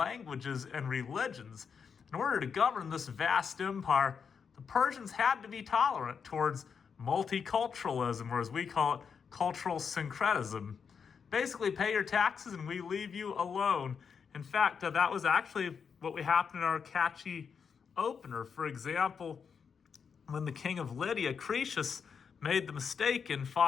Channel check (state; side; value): quieter; right; 6.4 dB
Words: and religions. In order to govern this vast empire, the Persians had to be tolerant towards multiculturalism, or as we call it, cultural syncretism. Basically, pay your taxes and we leave you alone. In fact, that was actually what happened in our catchy opener. For example, when the king of Lydia, Croesus, made the mistake in